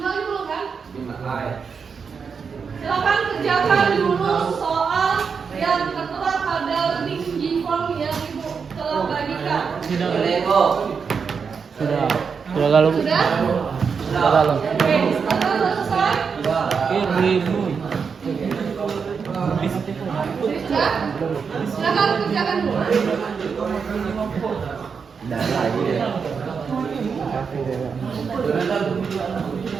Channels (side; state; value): left; quieter; 5.9 dB